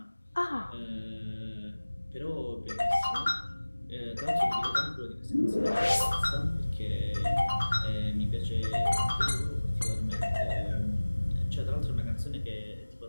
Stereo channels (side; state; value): both; inverted; correlation -1.00